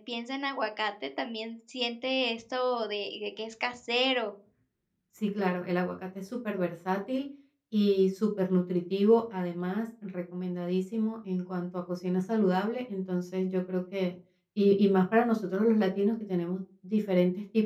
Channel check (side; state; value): both; identical; correlation 1.00